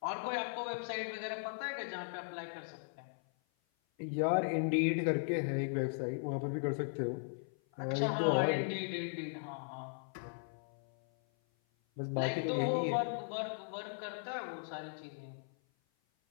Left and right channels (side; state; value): right; silent; 53 dB below the other